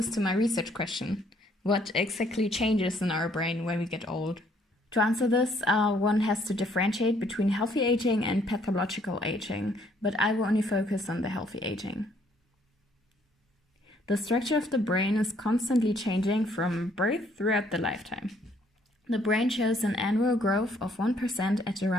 to my research question. What exactly changes in our brain when we get old? To answer this, one has to differentiate between healthy aging and pathological aging, but I will only focus on the healthy aging. The structure of the brain is constantly changing from birth throughout the lifetime. The brain shows an annual growth of 1% at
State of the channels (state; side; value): normal; both; correlation 0.65